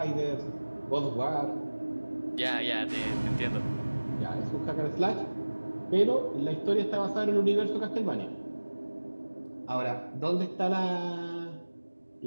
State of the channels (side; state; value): both; inverted; correlation -1.00